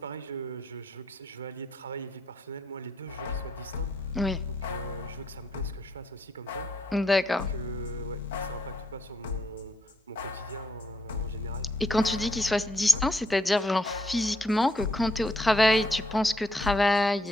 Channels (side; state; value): both; normal; correlation 0.75